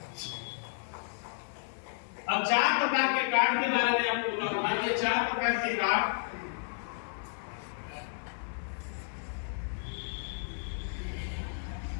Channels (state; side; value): silent; right; 55 dB below the other